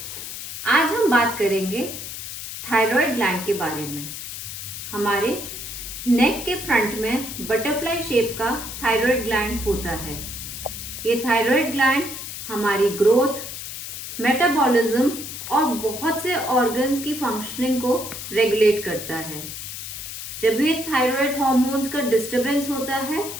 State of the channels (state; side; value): noise; left; hiss, 8 dB below the sound